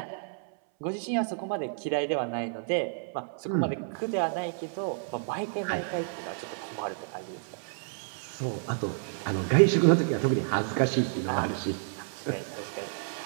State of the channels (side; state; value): left; silent; 58 dB below the other